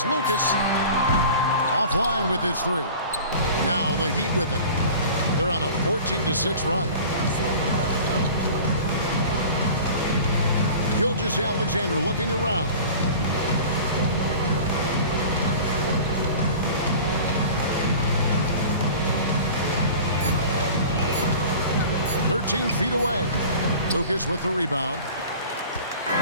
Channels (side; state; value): both; inverted; correlation -0.40